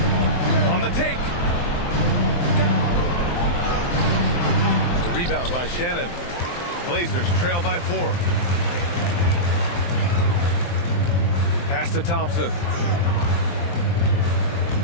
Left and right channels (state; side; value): late; right; 23 ms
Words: On the take. The rebound by Shannon. Blazers trail by 4. Pass to Thompson.